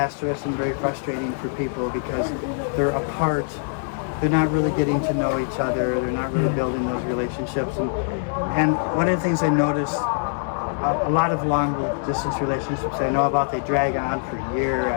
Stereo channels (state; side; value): silent; right; 63 dB below the other